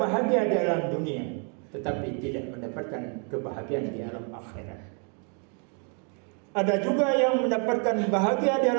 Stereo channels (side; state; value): left; quieter; 39.7 dB